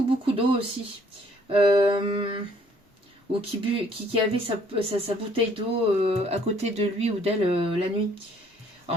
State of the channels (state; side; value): normal; both; correlation 0.62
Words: beaucoup d'eau aussi. Ou qui avait sa bouteille d'eau à côté de lui ou d'elle la nuit.